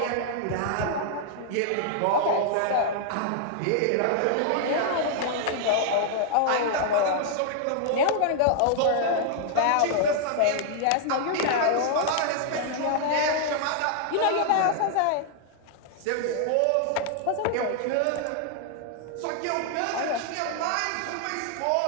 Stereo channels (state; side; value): different; both; correlation -0.01